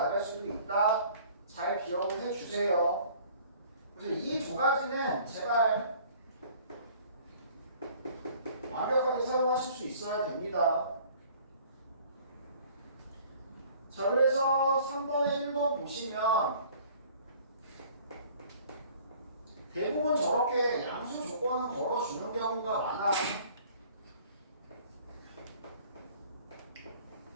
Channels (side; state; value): both; inverted; correlation -0.52